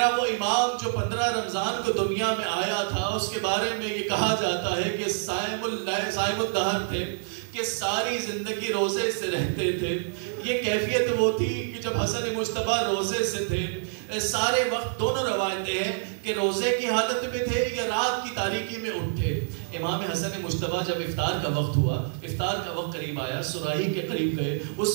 وہ امام جو 15 رمضان کو دنیا میں آیا تھا، اس کے بارے میں یہ کہا جاتا ہے کہ صائم الدہر تھے، کہ ساری زندگی روزے سے رہتے تھے. یہ کیفیت وہ تھی کہ جب حسن مجتبیٰ روزے سے تھے، سارے وقت دونوں روایتیں ہیں کہ روزے کی حالت میں تھے یا رات کی تاریکی میں اٹھے. امام حسن مجتبیٰ جب افطار کا وقت ہوا، افطار کا وقت قریب آیا، سراہی کے قریب گئے،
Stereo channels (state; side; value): silent; left; 60 dB below the other